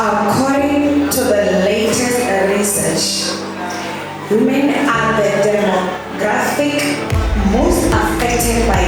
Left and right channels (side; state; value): both; identical; correlation 1.00